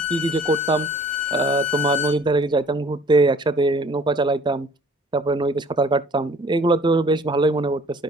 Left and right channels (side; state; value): both; normal; correlation 0.53